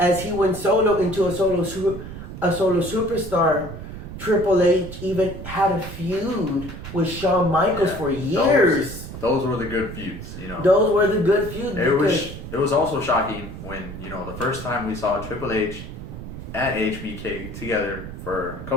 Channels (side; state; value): right; noise; rumble, 10 dB below the sound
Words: he went solo into a solo superstar, Triple H even had a feud with Shawn Michaels for years. Those were the good feuds, Those were the good feuds. It was also shocking when, the first time we saw Triple H and HBK together for a